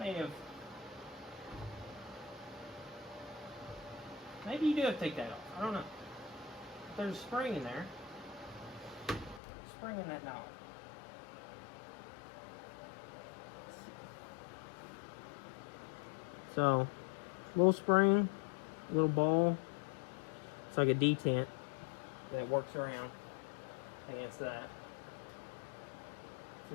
have... Maybe you do have to take that off. I don't know. If there's a spring in there. Spring in that knob. So, little spring, little ball. It's like a detent that works around against that.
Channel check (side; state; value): right; drops out; at 9.4 s